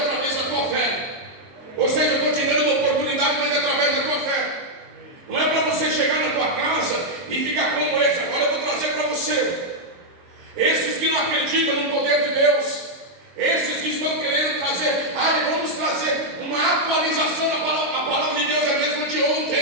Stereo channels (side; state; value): left; late; 22 ms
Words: da tua fé. Ou seja, eu estou te dando uma oportunidade, mas é através da tua fé. Não é para você chegar na tua casa e ficar como esse. Agora eu vou trazer para você esses que não acreditam no poder de Deus, esses que estão querendo trazer, vamos trazer uma atualização da palavra. A palavra de Deus é a mesma de